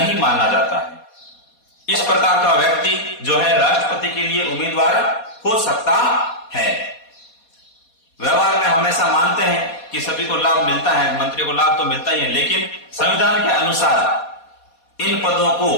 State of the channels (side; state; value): right; late; 4.2 ms